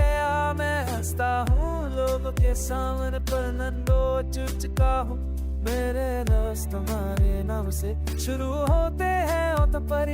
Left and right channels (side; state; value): both; identical; correlation 1.00